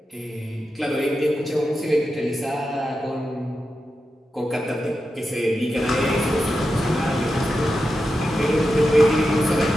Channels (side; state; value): both; normal; correlation 0.89